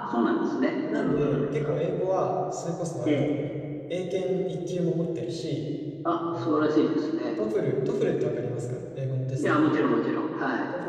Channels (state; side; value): identical; both; correlation 1.00